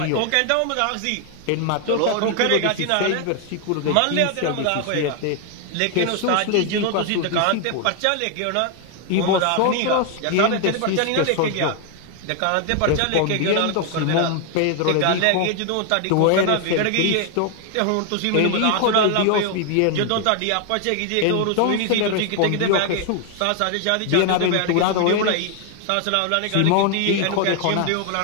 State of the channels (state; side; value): different; both; correlation 0.00